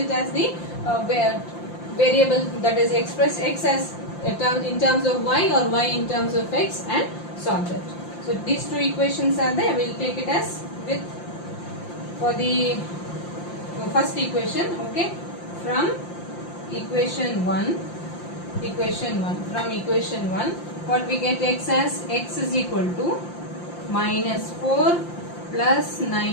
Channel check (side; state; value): right; late; 5.8 ms